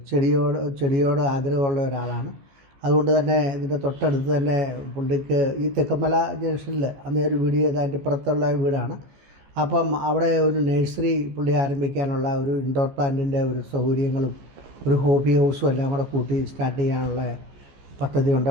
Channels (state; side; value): late; left; 15 ms